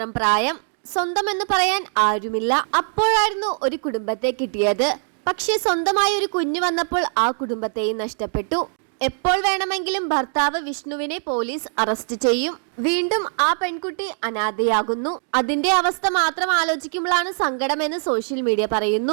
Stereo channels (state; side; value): silent; left; 56 dB below the other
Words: പ്രായം. സ്വന്തം എന്ന് പറയാൻ ആരുമില്ല. അപ്പോഴായിരുന്നു ഒരു കുടുംബത്തെ കിട്ടിയത്. പക്ഷെ സ്വന്തമായ ഒരു കുഞ്ഞു വന്നപ്പോൾ ആ കുടുംബത്തെയും നഷ്ടപ്പെട്ടു. എപ്പോൾ വേണമെങ്കിലും ഭർത്താവ് വിഷ്ണുവിനെ പോലീസ് അറസ്റ്റ് ചെയ്യും. വീണ്ടും ആ പെൺകുട്ടി അനാഥയാകുന്നു. അതിന്റെ അവസ്ഥ മാത്രം ആലോചിക്കുമ്പോഴാണ് സങ്കടമെന്ന് സോഷ്യൽ മീഡിയ